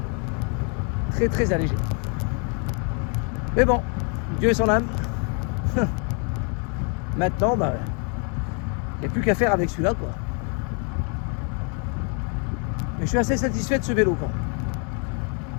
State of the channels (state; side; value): quieter; right; 38.5 dB